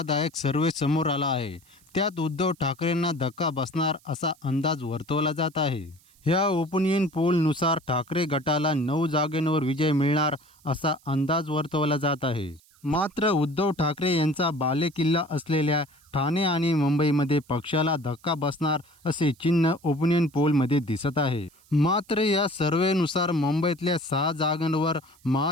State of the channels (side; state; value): right; noise; hiss, 30 dB below the sound